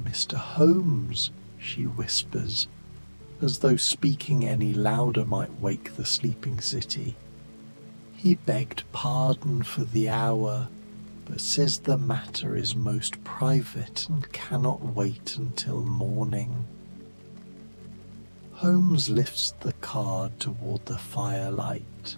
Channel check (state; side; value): inverted; both; correlation -1.00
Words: Holmes," she whispers, as though speaking any louder might wake the sleeping city. "He begged pardon for the hour, but says the matter is most private and cannot wait until morning." Holmes lifts the card toward the firelight.